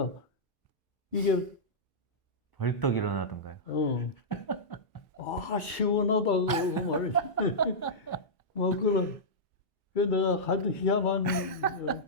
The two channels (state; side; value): late; right; 1.4 ms